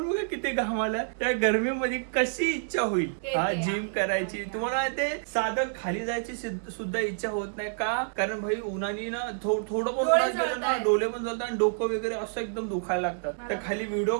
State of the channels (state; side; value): silent; left; digital silence